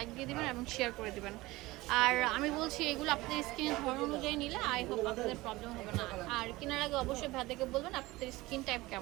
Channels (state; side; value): quieter; left; 19.9 dB